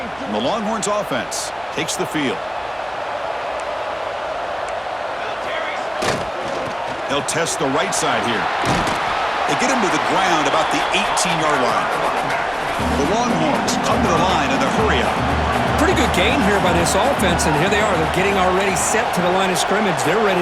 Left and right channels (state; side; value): identical; both; correlation 1.00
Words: And the Longhorns offense takes the field. They'll test the right side here. They get him to the ground about the 18-yard line. The Longhorns come to the line in the hurry-up. Pretty good game here by this offense, and here they are. They're getting already set to the line of scrimmage. They're ready